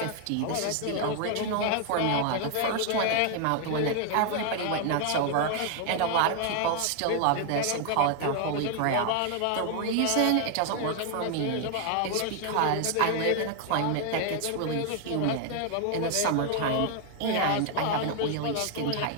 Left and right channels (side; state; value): both; different; correlation 0.00